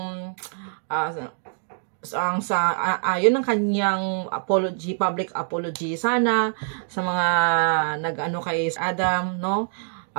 yun ang kanyang apology, public apology. Sana sa mga nag-ano kay Adam, no?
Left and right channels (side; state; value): left; silent; digital silence